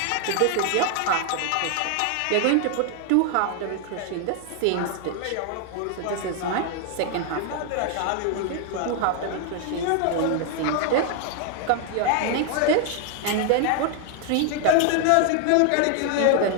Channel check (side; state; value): both; different; correlation 0.00